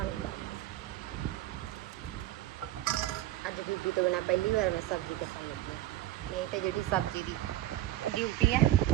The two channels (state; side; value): quieter; left; 14.4 dB